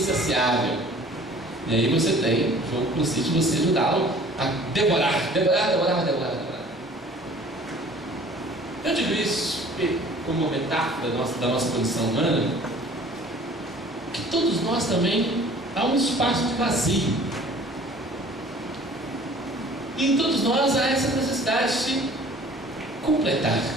E aí você tem, o jogo consiste em você ajudá-lo a devorar. Eu digo isso como uma metáfora da nossa condição humana, que todos nós também há um espaço de vazio. E em todos nós há essa necessidade de completar,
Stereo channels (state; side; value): normal; both; correlation 0.50